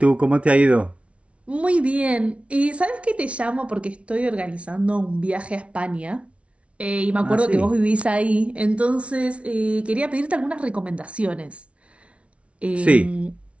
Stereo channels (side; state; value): left; late; 0.062 ms